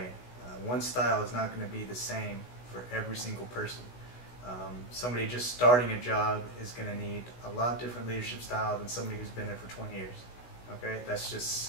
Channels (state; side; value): late; right; 16 ms